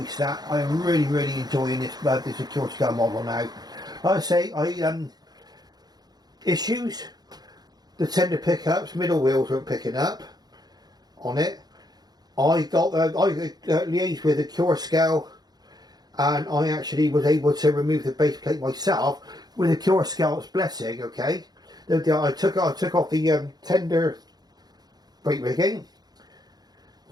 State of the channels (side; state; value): left; late; 0.19 ms